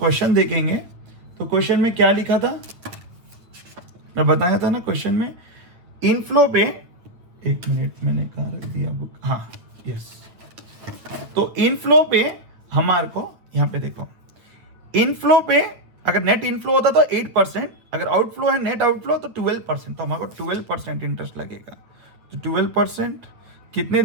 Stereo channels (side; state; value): left; late; 8.8 ms